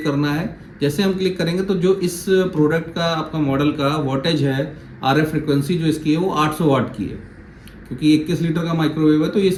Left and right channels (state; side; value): identical; both; correlation 1.00